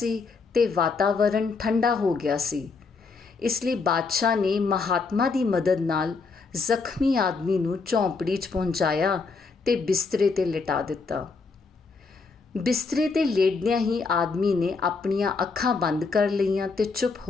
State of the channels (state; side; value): quieter; right; 4.5 dB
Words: ਤੇ ਵਾਤਾਵਰਣ ਠੰਡਾ ਹੋ ਗਿਆ ਸੀ। ਇਸ ਲਈ ਬਾਦਸ਼ਾਹ ਨੇ ਮਹਾਤਮਾ ਦੀ ਮਦਦ ਨਾਲ ਜ਼ਖਮੀ ਆਦਮੀ ਨੂੰ ਝੌਂਪੜੀ 'ਚ ਪਹੁੰਚਾਇਆ ਤੇ ਬਿਸਤਰੇ 'ਤੇ ਲਿਟਾ ਦਿੱਤਾ। ਬਿਸਤਰੇ 'ਤੇ ਲੇਟਦਿਆਂ ਹੀ ਆਦਮੀ ਨੇ ਆਪਣੀਆਂ ਅੱਖਾਂ ਬੰਦ ਕਰ ਲਈਆਂ ਤੇ ਚੁੱਪ